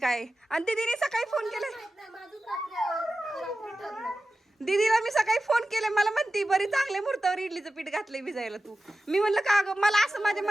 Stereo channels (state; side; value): normal; both; correlation 0.93